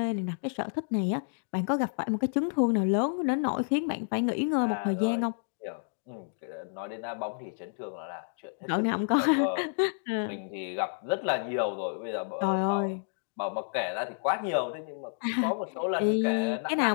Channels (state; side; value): silent; right; digital silence